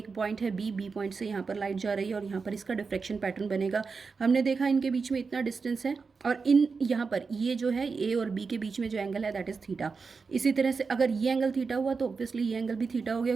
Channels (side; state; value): left; quieter; 4.9 dB